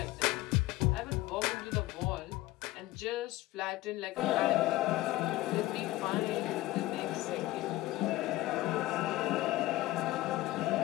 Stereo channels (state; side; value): quieter; right; 17.3 dB